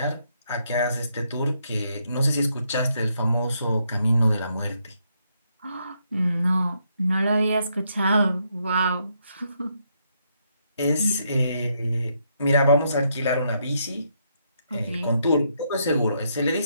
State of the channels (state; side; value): inverted; both; correlation -0.76